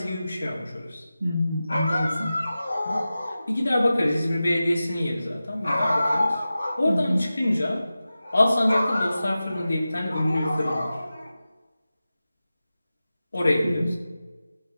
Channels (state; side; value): inverted; both; correlation -0.94